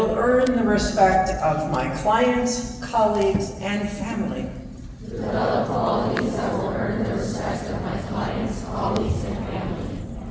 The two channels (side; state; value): both; identical; correlation 1.00